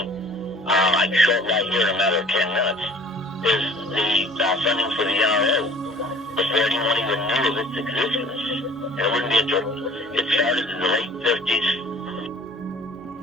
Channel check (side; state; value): both; normal; correlation 0.50